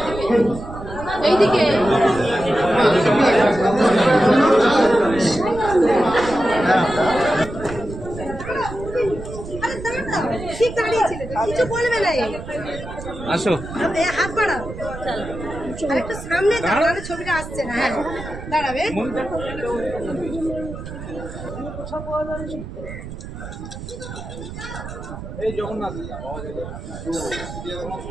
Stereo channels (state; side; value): noise; right; rumble, 11 dB below the sound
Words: এইদিকে ঠিক দাঁড়িয়েছিল কিছু বলবে না আসো হাত বাড়াও একটু সামনে দাঁড়ালে ছবিটা আসছে না হ্যাঁ দাঁড়াবে এই জগন্নাথ